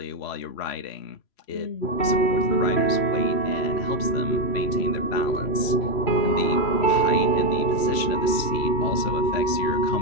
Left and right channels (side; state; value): right; late; 3.0 ms